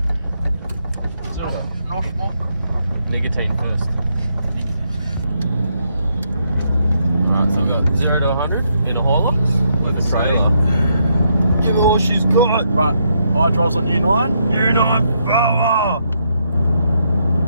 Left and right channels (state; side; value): inverted; both; correlation -0.77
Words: So, no smoke. Nicotine first. Alright, so we've got 0 to 100 in a Hilux with a trailer. Give her all she's got. Right, I drives on U9. U9 power!